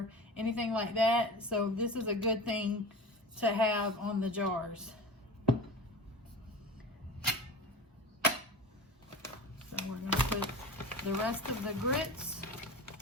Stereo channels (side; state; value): both; normal; correlation 0.32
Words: anything like that. So this is a good thing to have on the jars. So we're going to put the rest of the grits